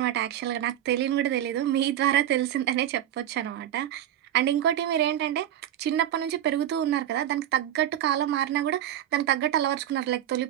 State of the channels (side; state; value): left; quieter; 11.4 dB